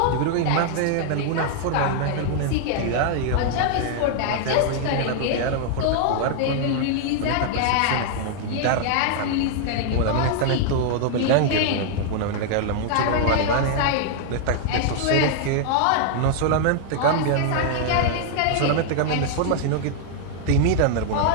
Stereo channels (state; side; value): different; both; correlation 0.00